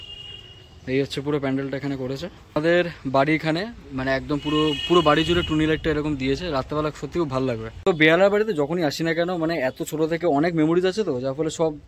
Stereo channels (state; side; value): identical; both; correlation 1.00